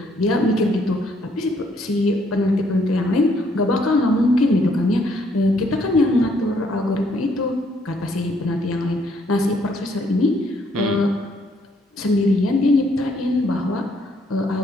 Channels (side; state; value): both; normal; correlation 0.68